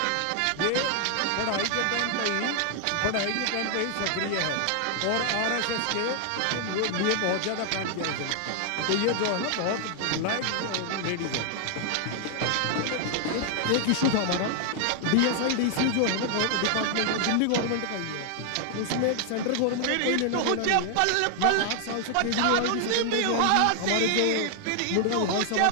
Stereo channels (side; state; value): both; different; correlation 0.00